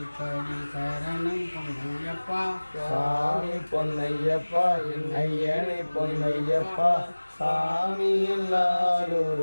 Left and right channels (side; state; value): both; inverted; correlation -1.00